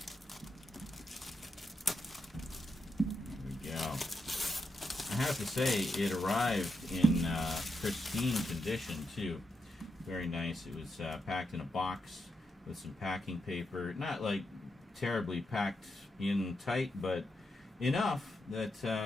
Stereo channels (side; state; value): both; normal; correlation 0.84